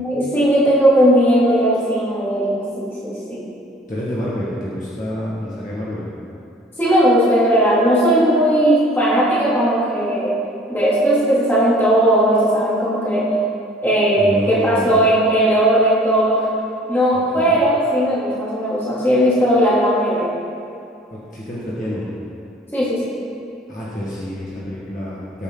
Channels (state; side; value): normal; both; correlation 0.51